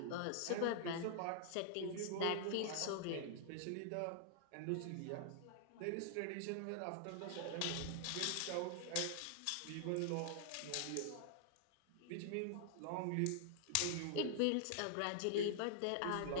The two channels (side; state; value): both; different; correlation 0.00